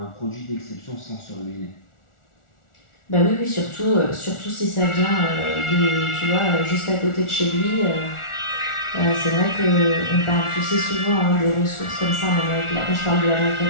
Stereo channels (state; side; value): late; right; 1.4 ms